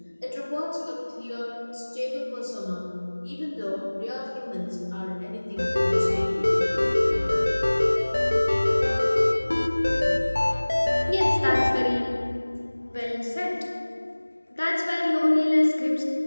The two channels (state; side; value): inverted; both; correlation -1.00